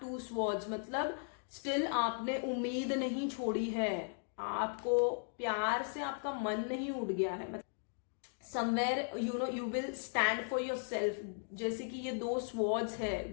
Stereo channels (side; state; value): right; silent; digital silence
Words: two swords, मतलब स्टिल आपने उम्मीद नहीं छोड़ी है, आपको प्यार से आपका मन नहीं उड़ गया है। मतलब somewhere you will stand for your self, जैसे कि ये 2 स्वॉर्ड्स है,